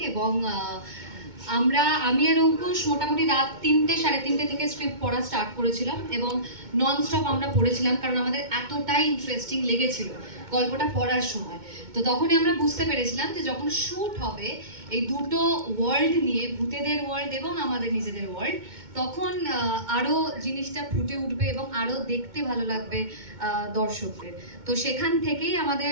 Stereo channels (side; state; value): left; late; 2.2 ms